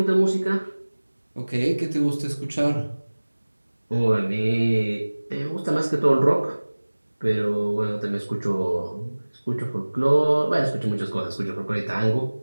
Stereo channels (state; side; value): inverted; both; correlation -1.00